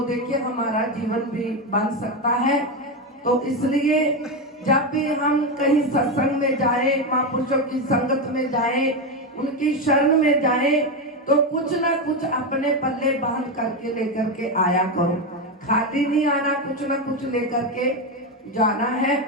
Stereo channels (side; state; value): both; normal; correlation 0.11